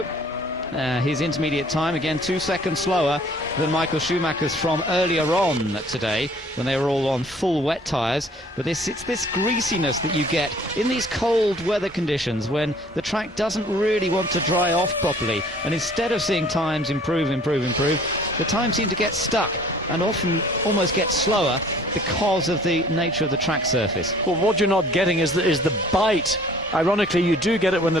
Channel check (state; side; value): normal; both; correlation 0.54